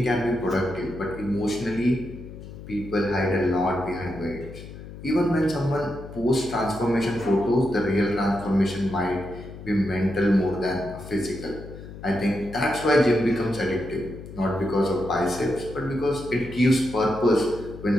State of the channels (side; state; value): left; noise; hum, 13 dB below the sound